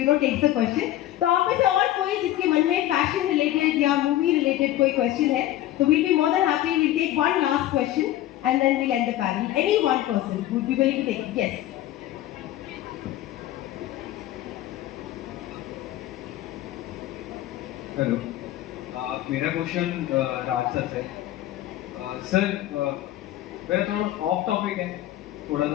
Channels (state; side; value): quieter; right; 14.0 dB